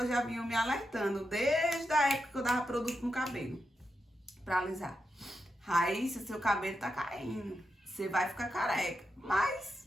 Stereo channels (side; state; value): both; normal; correlation 0.86